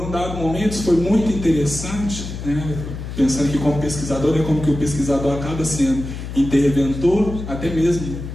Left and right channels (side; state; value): left; noise; hum, 8 dB below the sound